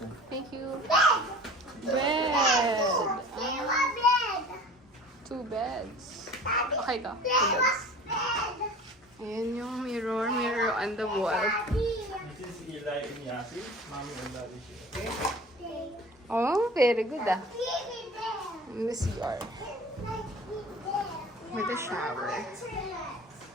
Thank you. Bed. 2 beds. Okay ka. 2 beds. Ayan yung mirror on the wall. This is Eli and Yasi. Mommy and Daddy here. Okay? Oh, very good ah. In the CR. With a shower.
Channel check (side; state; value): both; normal; correlation 0.42